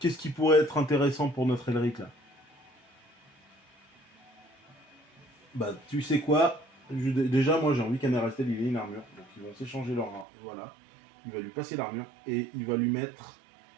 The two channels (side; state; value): left; drops out; at 10.2 s